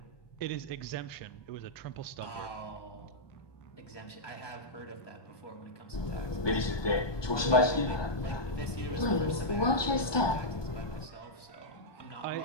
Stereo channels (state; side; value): late; right; 1.2 ms